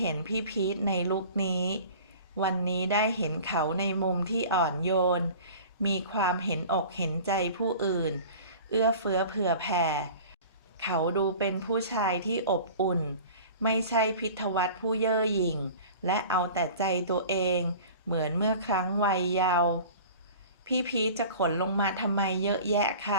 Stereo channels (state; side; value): inverted; both; correlation -0.41